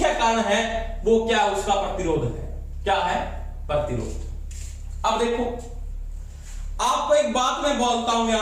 कारण है वो क्या, उसका प्रतिरोध है। क्या है, प्रतिरोध। अब देखो आपको एक बात मैं बोलता हूं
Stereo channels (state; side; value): identical; both; correlation 1.00